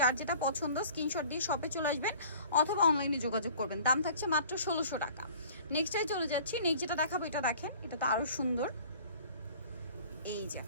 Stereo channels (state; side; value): inverted; both; correlation -0.49